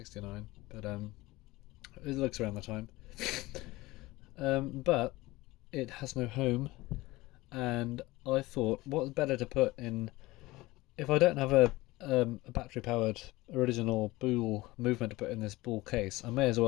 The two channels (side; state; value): right; quieter; 19.9 dB